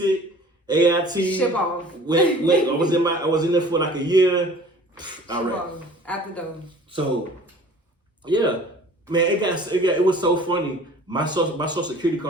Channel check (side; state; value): both; normal; correlation 0.47